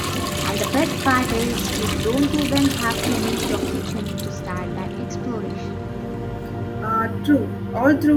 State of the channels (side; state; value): both; identical; correlation 1.00